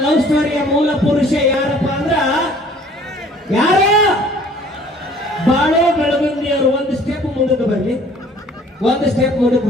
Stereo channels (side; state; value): both; normal; correlation 0.54